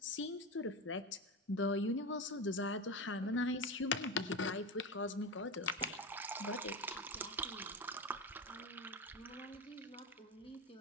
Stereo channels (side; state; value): both; normal; correlation 0.20